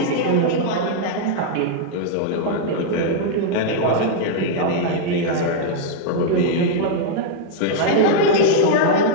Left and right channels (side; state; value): both; different; correlation -0.01